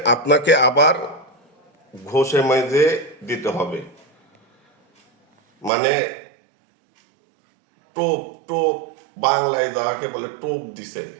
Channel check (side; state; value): left; drops out; at 5.7 s